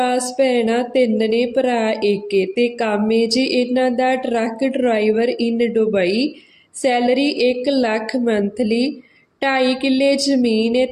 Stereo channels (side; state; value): both; identical; correlation 1.00